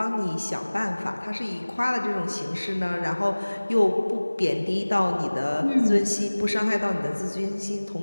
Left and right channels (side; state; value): both; inverted; correlation -1.00